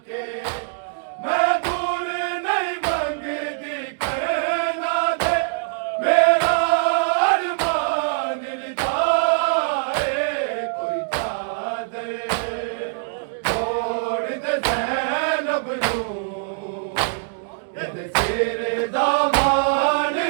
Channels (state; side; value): silent; left; digital silence